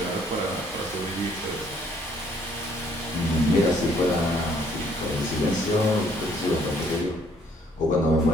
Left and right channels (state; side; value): normal; both; correlation 0.64